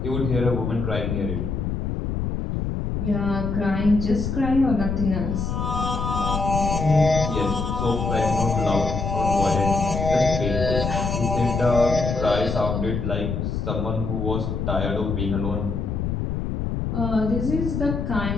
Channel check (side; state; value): left; noise; rumble, 2 dB below the sound